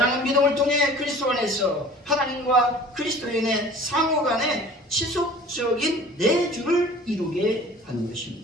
믿음을 통해 그리스도 안에서 하나님과 그리스도인의 상호 간의 지속적인 내주를 이루게 하는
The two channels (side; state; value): both; normal; correlation 0.46